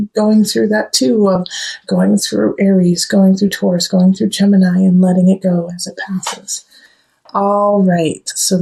going through that too, of going through Aries, going through Taurus, going through Gemini, and letting it go as it passes. All right, so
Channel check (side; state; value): both; identical; correlation 1.00